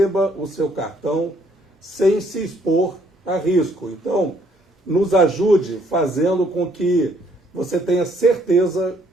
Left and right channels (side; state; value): both; normal; correlation 0.66